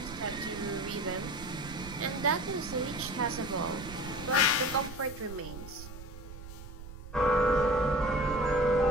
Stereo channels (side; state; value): right; noise; rumble, 13 dB below the sound